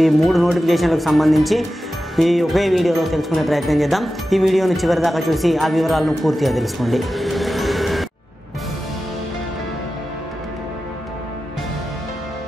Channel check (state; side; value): normal; both; correlation 0.93